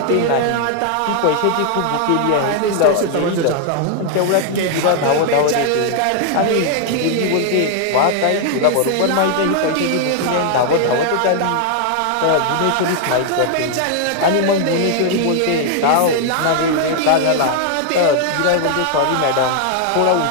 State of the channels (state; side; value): different; both; correlation 0.00